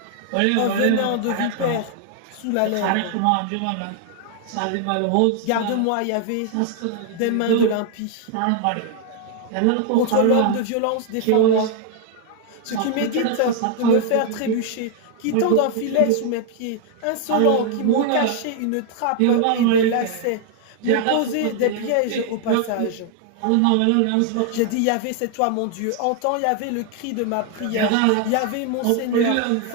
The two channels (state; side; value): different; both; correlation 0.00